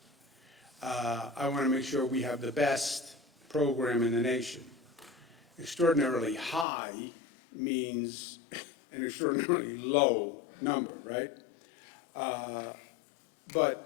I want to make sure we have the best program in the nation. Extraordinarily high means an extraordinarily low number, right? But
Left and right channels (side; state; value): right; drops out; at 6.7 s